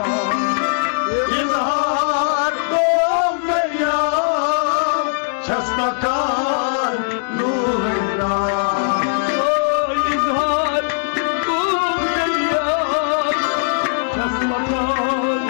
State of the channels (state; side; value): silent; right; digital silence